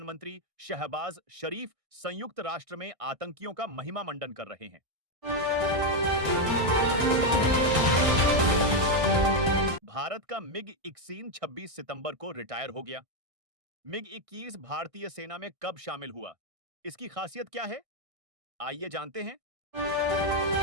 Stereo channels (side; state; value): left; late; 1.6 ms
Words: शहबाज शरीफ संयुक्त राष्ट्र में आतंकियों का महिमा मंडन कर रहे हैं। भारत का मिग-21 26 सितंबर को रिटायर हो गया। मिग-21 भारतीय सेना में कब शामिल हुआ? इसकी खासियत क्या है? आइए जानते हैं।